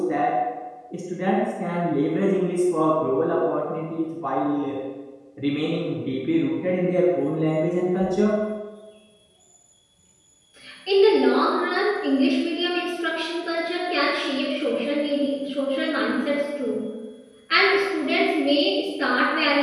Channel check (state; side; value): identical; both; correlation 1.00